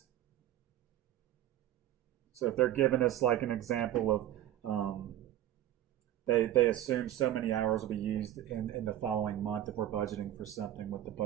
So if they're giving us like an example of they assume so many hours will be used in the following month if we're budgeting for something, what the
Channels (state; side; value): quieter; left; 12.8 dB